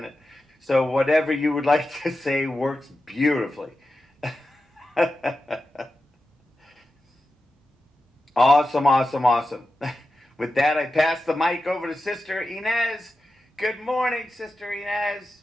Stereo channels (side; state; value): both; normal; correlation 0.91